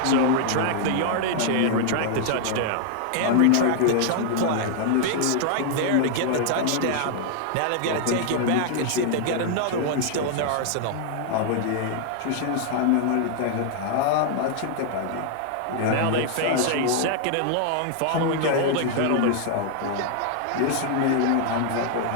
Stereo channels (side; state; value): both; different; correlation 0.00